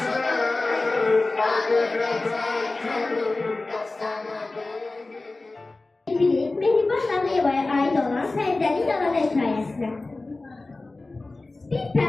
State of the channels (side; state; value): right; quieter; 3.2 dB